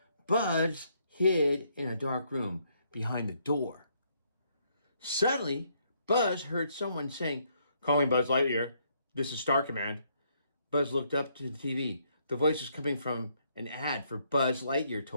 Buzz hid in a dark room behind the door. Suddenly, Buzz heard someone saying, "Calling Buzz Lightyear. This is Star Command." Buzz looked up to the TV. The voice was coming from an ad for Buzz Lightyear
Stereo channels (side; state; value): both; inverted; correlation -0.71